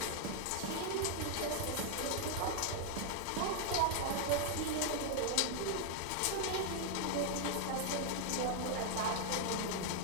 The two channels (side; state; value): both; different; correlation 0.00